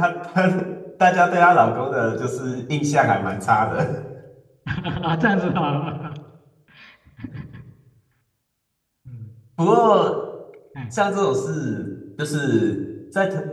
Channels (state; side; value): identical; both; correlation 1.00